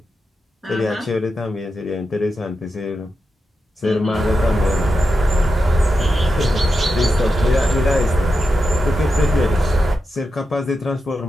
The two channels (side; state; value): both; normal; correlation 0.88